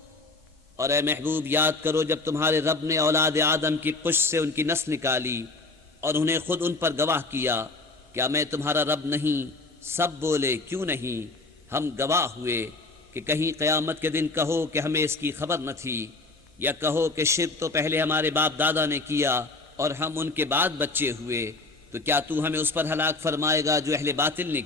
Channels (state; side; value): quieter; right; 3.5 dB